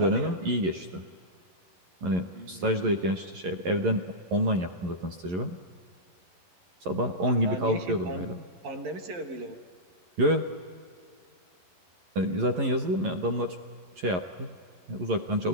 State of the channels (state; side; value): late; left; 11 ms